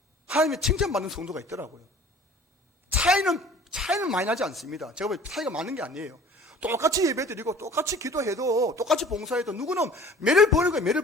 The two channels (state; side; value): normal; both; correlation 0.48